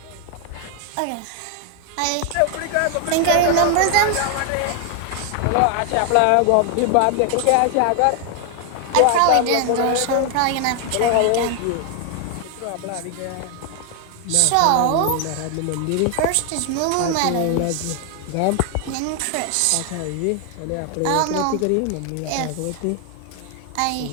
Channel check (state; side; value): different; both; correlation 0.00